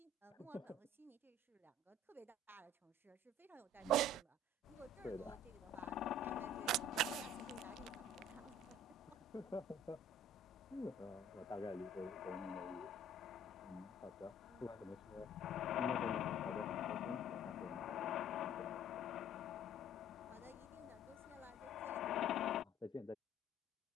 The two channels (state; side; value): normal; both; correlation 0.52